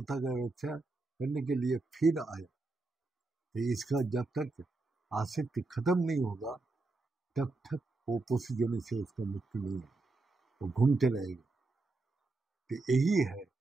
का रक्षा करने के लिए फिर आया। तो इसका जब तक आसक्ति खत्म नहीं होगा तब तक वो पोषजन से उसका मुक्ति नहीं है, वो घूमते रहेगा। तो यही है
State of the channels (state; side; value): quieter; left; 3.4 dB